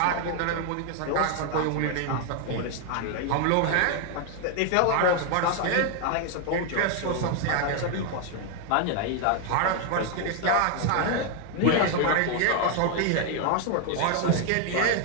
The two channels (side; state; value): both; different; correlation 0.00